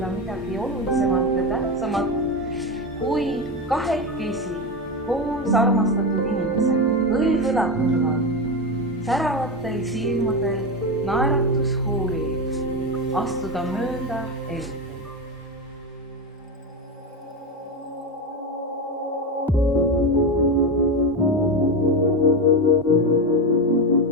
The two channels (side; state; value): both; normal; correlation 0.16